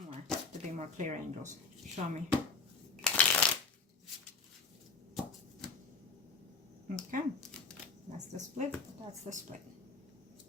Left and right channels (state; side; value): quieter; right; 4.6 dB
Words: more to be more clear, angels. Show me. Okay, that's the split. That's the split.